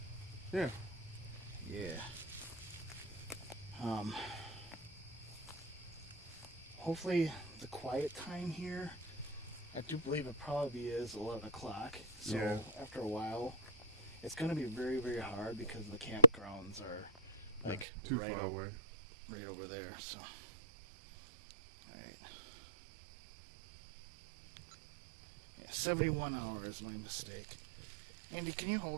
Yeah. Yeah. Hopefully the quiet time here, I do believe it probably is 11 o'clock. So yeah. After a while, it's going to be very, very hard because the campgrounds are too far away. Right over there. So, all right. Yeah, 71 hours, my mistake. Andy, can you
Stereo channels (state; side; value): drops out; left; at 17.9 s